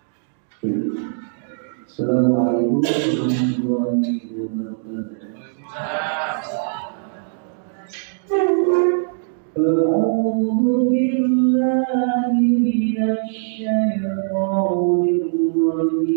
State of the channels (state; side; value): silent; left; digital silence